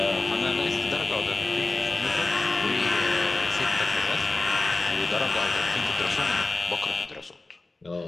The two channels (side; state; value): right; quieter; 3.2 dB